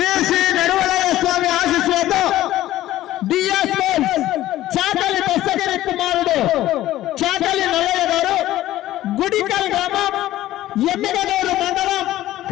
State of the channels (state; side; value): quieter; right; 14.7 dB